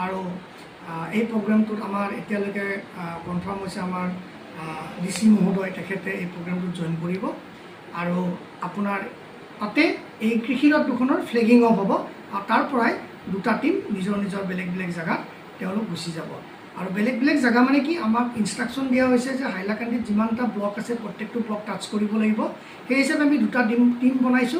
আৰু এই প্ৰগ্ৰেমটোত আমাৰ এতিয়ালৈকে কনফাৰ্ম হৈছে আমাৰ DC মহোদয় তেখেতে এই প্ৰগ্ৰেমটোত জইন কৰিব আৰু আপোনাৰ তাতে এই কৃষিৰত দুখনৰ ফ্লেগিং অফ হ'ব আৰু তাৰ পৰাই দুটা টিম নিজৰ নিজৰ বেলেগ বেলেগ জেগাত তেওঁলোক গুচি যাব আৰু বেলেগ বেলেগ জেগা মানে কি আমাক ইনষ্ট্ৰাকশ্যন দিয়া হৈছে যে হাইলাকান্দিত যিমানটা ব্লক আছে প্ৰত্যেকটো ব্লক টাচ কৰিব লাগিব সেই হিচাপে আমি দুটা টিম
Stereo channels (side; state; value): both; identical; correlation 1.00